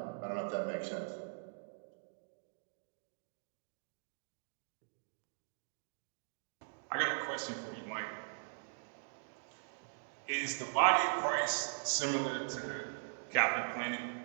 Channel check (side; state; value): left; silent; digital silence